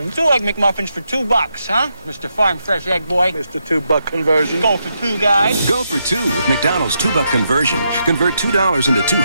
2 Egg McMuffins for $2, huh? Mr. Farm Fresh Egg Boy. Mr. $2 conversion. Go for 2 guys. Go for 2 with McDonald's $2 conversion. Convert $2 into 2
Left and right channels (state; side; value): inverted; both; correlation -0.82